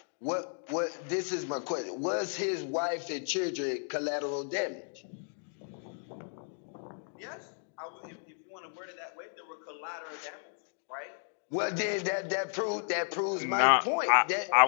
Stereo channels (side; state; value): right; silent; 56 dB below the other